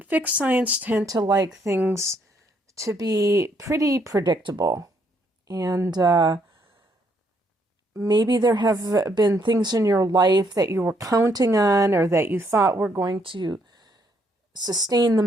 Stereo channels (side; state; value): both; normal; correlation 0.71